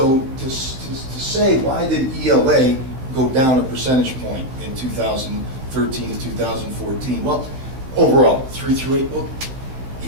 to say, why did ELA go down a percentage point in 2013 to 2014? Well, overall, 3 through 8, well,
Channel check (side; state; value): left; late; 15 ms